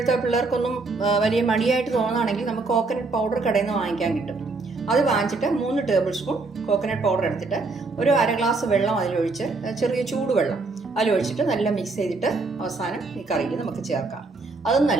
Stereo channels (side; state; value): left; quieter; 3.7 dB